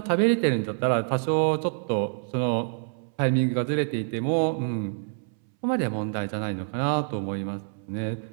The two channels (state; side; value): silent; left; 60 dB below the other